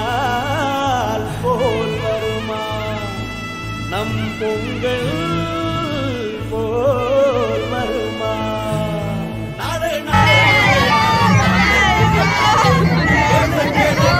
போல் வருமா? நம் பொங்கல் போல் வருமா?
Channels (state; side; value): identical; both; correlation 1.00